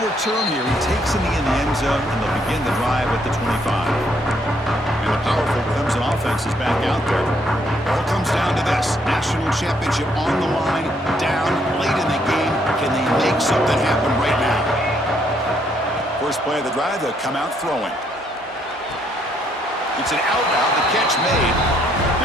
return here. He takes it in the end zone, and they'll begin the drive at the 25. And the powerful Clemson offense is back out there. It all comes down to this. National championship on the line, down late in the game. Can they make something happen right now? First play of the drive, they'll come out throwing. It's an out route, the catch made.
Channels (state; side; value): normal; both; correlation 0.71